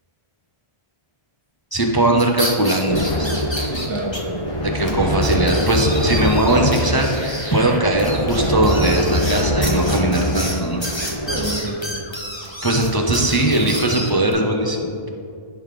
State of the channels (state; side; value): late; right; 1.3 ms